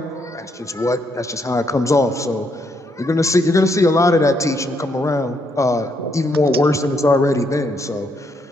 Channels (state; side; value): normal; both; correlation 0.75